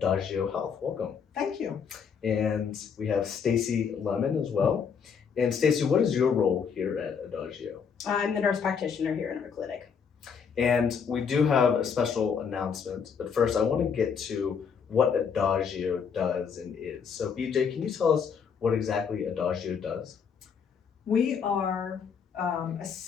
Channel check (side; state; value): right; quieter; 6.6 dB